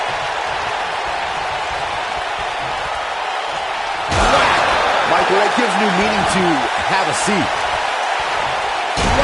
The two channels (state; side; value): identical; both; correlation 1.00